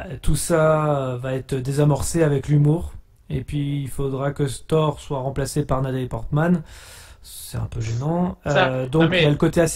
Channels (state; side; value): identical; both; correlation 1.00